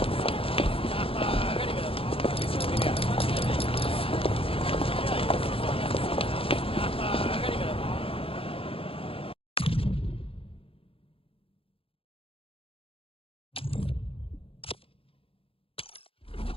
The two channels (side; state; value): right; late; 0.27 ms